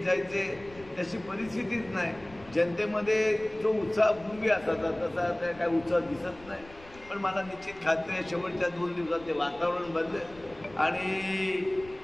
जायचे, तशी परिस्थितीच नाही. जनतेमध्ये जो उत्साह पूर्वी असायचा तसा आता काय उत्साह दिसत नाही. पण मला निश्चित खात्री आहे शेवटच्या 2 दिवसात ते वातावरण बदलेल आणि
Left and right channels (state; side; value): noise; left; rumble, 22 dB below the sound